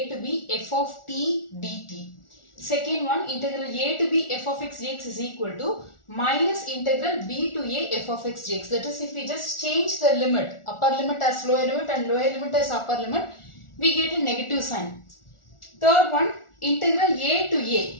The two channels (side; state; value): right; late; 1.4 ms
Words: to b f of t dt. Second one, integral a to b f of x dx is equal to minus integral b to a f of x dx. That is, if we just change the limit, upper limit as lower limit and lower limit as upper limit, we get a negative sign. Third one, integral a to a.